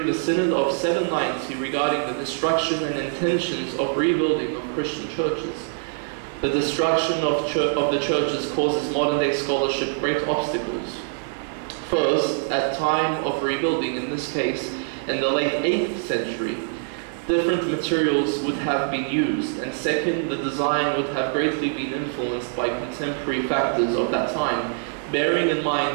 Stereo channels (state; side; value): silent; left; 63 dB below the other